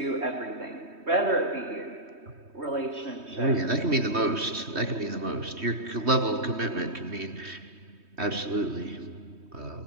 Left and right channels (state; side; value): late; left; 3.2 ms